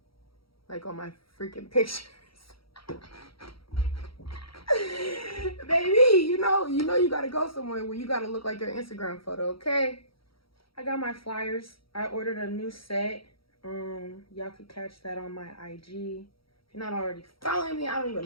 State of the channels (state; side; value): late; right; 0.75 ms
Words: like on my freaking pictures. Baby, you know you gotta go somewhere where you gotta look like your Instagram photo, okay? I got my flyers. I ordered a new set. Y'all could catch that on my IG. If you're not already following me, I don't